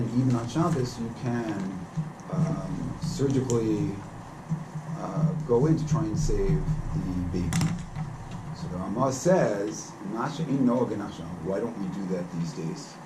even on Shabbos you can surgically go in to try and save the baby. So the Ramah says, why don't we do that these days?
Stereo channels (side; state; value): both; identical; correlation 1.00